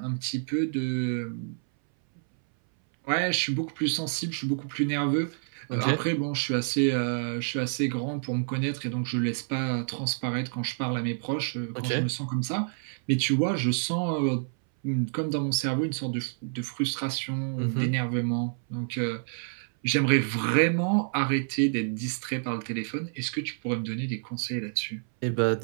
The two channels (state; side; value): silent; left; 59 dB below the other